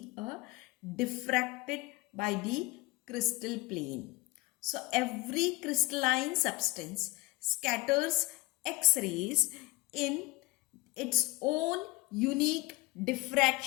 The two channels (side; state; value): right; quieter; 21.0 dB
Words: diffracted by the crystal plane. So every crystalline substance scatters X-rays in its own unique